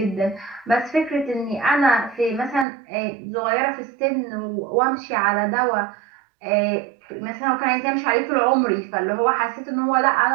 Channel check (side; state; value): left; drops out; at 2.7 s